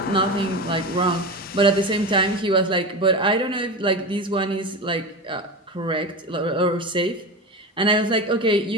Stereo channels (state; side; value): normal; both; correlation 0.24